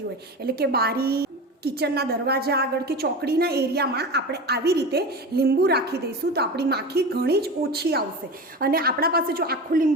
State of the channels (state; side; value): normal; both; correlation 0.28